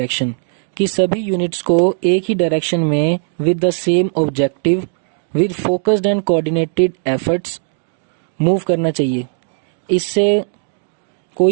कि सभी यूनिट्स को एक ही डायरेक्शन में with the same objective with focused and coordinated efforts move करना चाहिए। इससे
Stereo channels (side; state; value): left; silent; digital silence